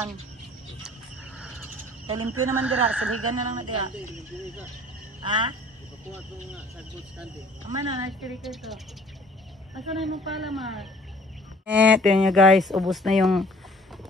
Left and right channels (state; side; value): normal; both; correlation 0.53